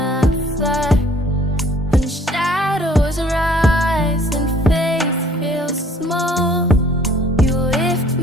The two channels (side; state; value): both; normal; correlation 0.57